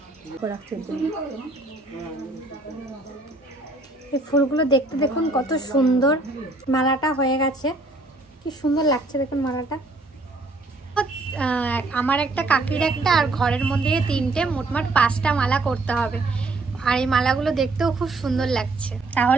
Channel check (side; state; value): left; quieter; 3.1 dB